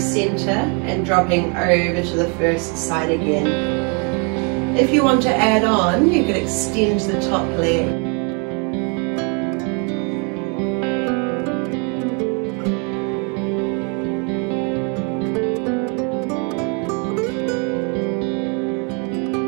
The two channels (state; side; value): quieter; left; 35.8 dB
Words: and dropping over to the first side again. If you want to add on, you could extend the top leg.